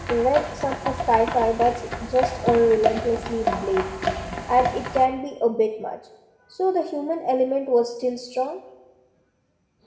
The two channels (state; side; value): identical; both; correlation 1.00